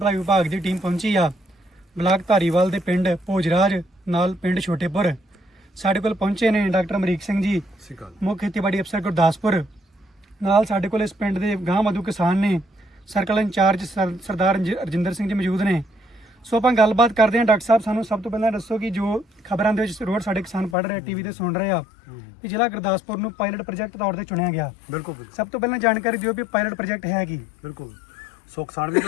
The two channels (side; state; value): right; drops out; at 20.8 s